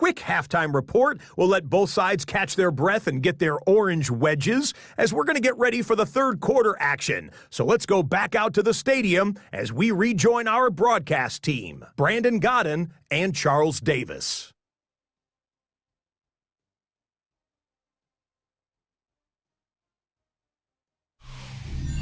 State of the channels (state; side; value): identical; both; correlation 1.00